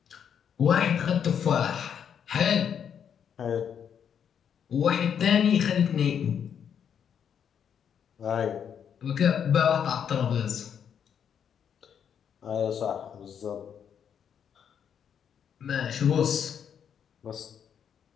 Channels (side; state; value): right; quieter; 8.1 dB